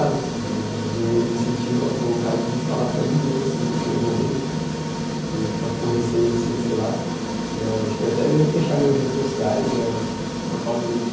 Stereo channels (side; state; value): both; identical; correlation 1.00